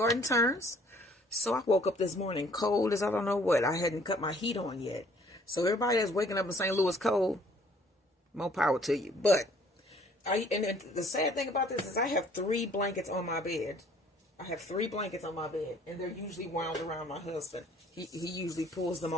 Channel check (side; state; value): both; normal; correlation 0.58